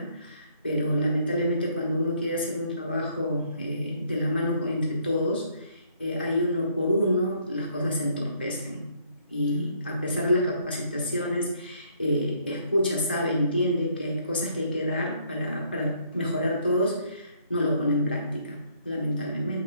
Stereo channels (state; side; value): inverted; both; correlation -0.66